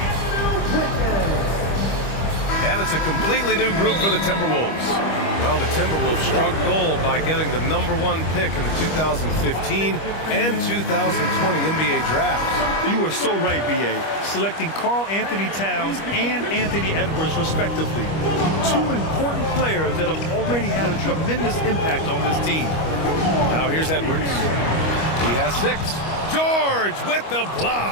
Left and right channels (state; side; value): late; right; 25 ms